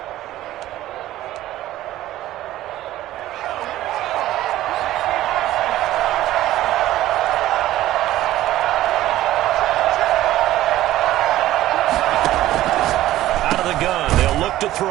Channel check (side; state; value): left; quieter; 14.7 dB